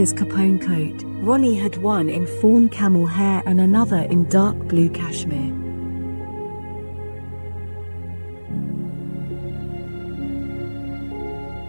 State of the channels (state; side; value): inverted; both; correlation -1.00